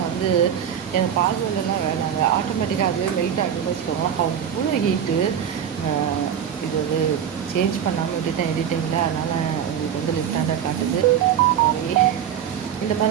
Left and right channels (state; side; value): quieter; left; 9.0 dB